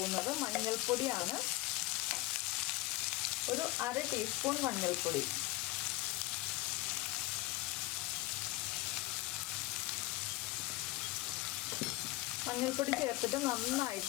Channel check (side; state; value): right; quieter; 19.6 dB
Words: മഞ്ഞൾപ്പൊടിയാണ്. ഒരു 1/2 ടീസ്പൂൺ മഞ്ഞൾപ്പൊടി. മഞ്ഞൾപ്പൊടി ചേർത്തിട്ട്